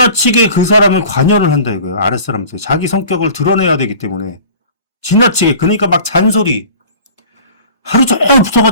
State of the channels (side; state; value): both; inverted; correlation -0.44